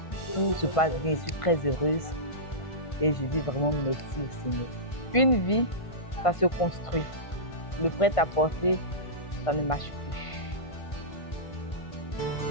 se passe bien. Je suis très heureuse et je dis vraiment merci au Seigneur. Une vie, ça se construit. Le prêt-à-porter, ça ne marche plus.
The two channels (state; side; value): late; right; 1.5 ms